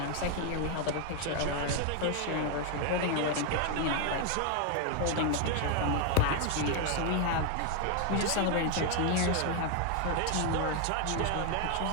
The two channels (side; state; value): both; different; correlation 0.01